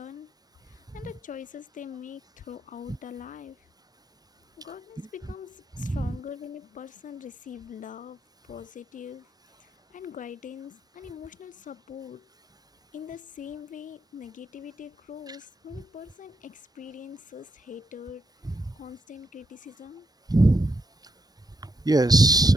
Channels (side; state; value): both; normal; correlation 0.79